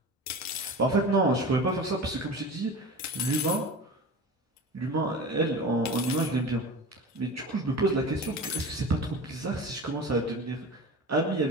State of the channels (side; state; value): both; normal; correlation 0.33